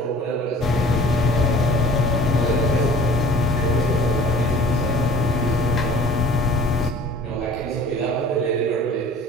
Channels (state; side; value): normal; both; correlation 0.47